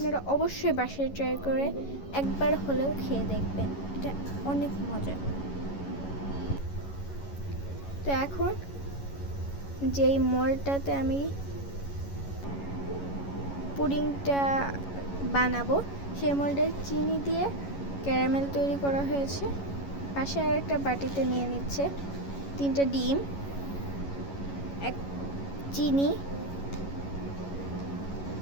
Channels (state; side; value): late; right; 11 ms